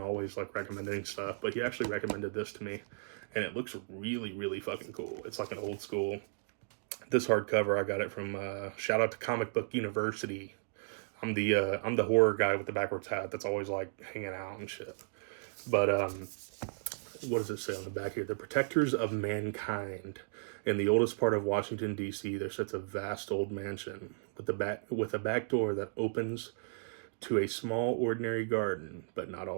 always like recommending stuff. But he actually recommended this to me, and it looks really, really fucking cool. It's like an old school. This hardcover, I got it from shout out to Comic Book University. I'm the horror guy with the backwards hat that's always like hanging out and shit. But what does it say on the back here? The protectors of mankind. In the oldest part of Washington, D.C., there sits a vast old mansion with a back door that opens to a small, ordinary garden, but not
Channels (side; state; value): left; silent; digital silence